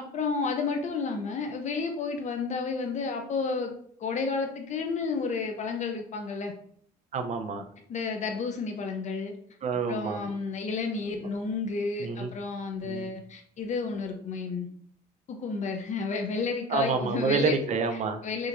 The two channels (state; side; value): normal; both; correlation 0.35